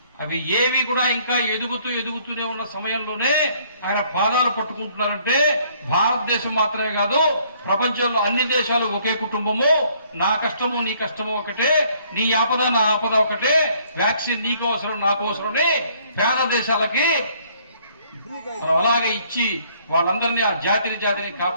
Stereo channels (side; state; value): both; inverted; correlation -0.63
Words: అవి ఏవి కూడా ఇంకా ఎదుగుతూనే ఉన్న సమయంలోనే ఆయన పాదాలు పట్టుకుంటున్నారంటే భారతదేశం మాత్రమే కాదు, ప్రపంచంలో అన్ని దేశాలు ఒకే కుటుంబము. నా కష్టము నీ కష్టము ఒకటే, నీ ఆపద నా ఆపద ఒకటే, వ్యాక్సిన్ నీకు అవసరం నాకు అవసరమని పేద దేశాలకి మనం అలాగే ఇచ్చి వాళ్ళందరినీ ఆ జాతిని